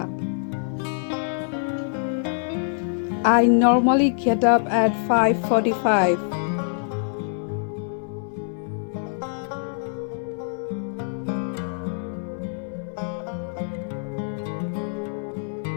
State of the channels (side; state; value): right; silent; 62 dB below the other